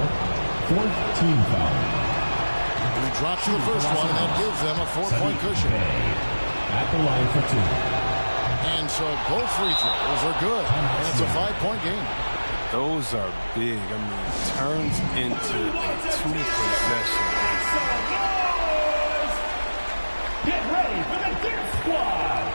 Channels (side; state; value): both; inverted; correlation -1.00